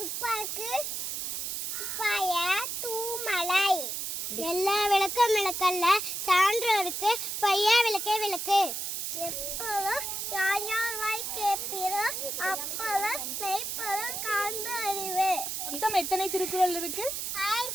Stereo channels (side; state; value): right; noise; hiss, 3 dB below the sound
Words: துப்பாய தூமலை எல்லா விளக்கும் விளக்கல்ல சான்றோருக்கு பையா விளக்கே விளக்கு எப்போதும் யார் யார் வாய் கேட்பீரோ அப்போதும் மெய்ப்பொருள் காண்பு அறிவு. மொத்தம் எத்தனை திருக்குறள் இருக்கு?